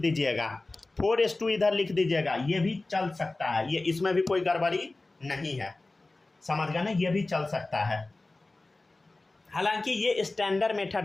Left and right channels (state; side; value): quieter; right; 3.1 dB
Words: 4s2 इधर लिख दीजिएगा, ये भी चल सकता है, ये इसमें भी कोई गड़बड़ी नहीं है, समझ गए ना, ये भी चल सकता है। हालांकि ये स्टैंडर्ड